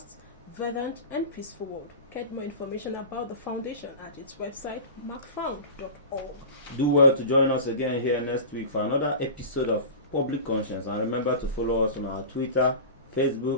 verdant, and peaceful world. Get more information about the foundation at its website, macfound.org. Do well to join us again here next week for another episode of Public Conscience. And remember to follow us on our Twitter,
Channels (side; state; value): both; inverted; correlation -0.32